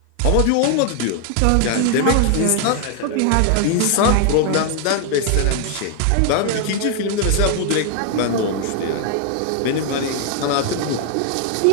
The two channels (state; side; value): different; both; correlation 0.00